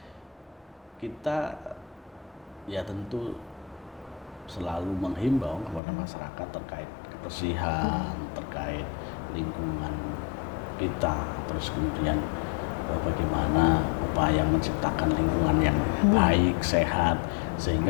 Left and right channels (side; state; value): right; drops out; at 5.8 s